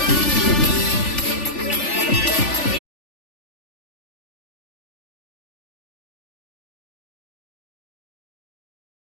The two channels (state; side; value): late; right; 3.4 ms